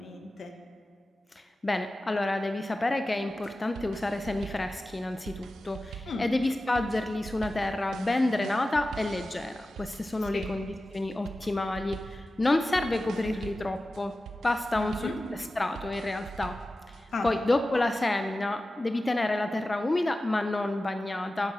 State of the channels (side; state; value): both; normal; correlation 0.95